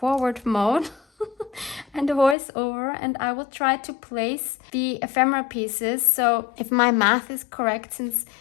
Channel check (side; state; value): right; drops out; at 2.4 s